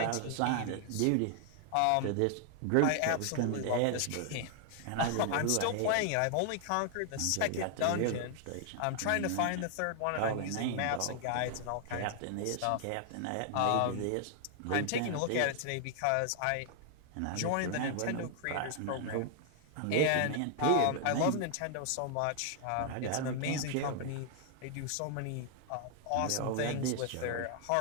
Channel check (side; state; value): both; different; correlation 0.00